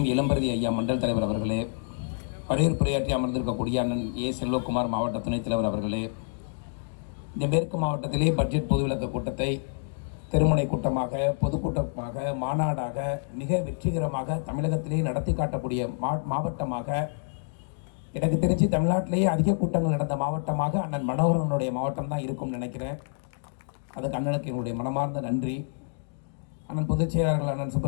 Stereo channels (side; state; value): right; silent; digital silence